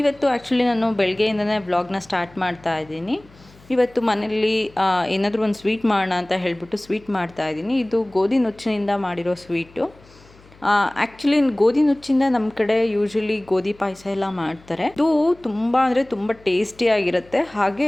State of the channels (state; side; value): noise; left; hum, 26 dB below the sound